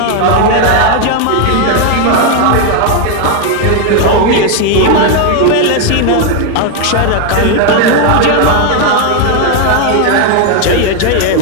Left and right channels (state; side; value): different; both; correlation 0.01